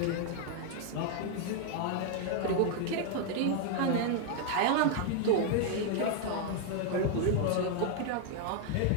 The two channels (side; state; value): both; different; correlation 0.00